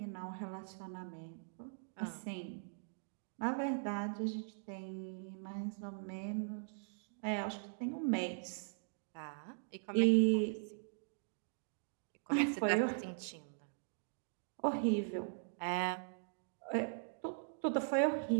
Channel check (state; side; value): silent; left; digital silence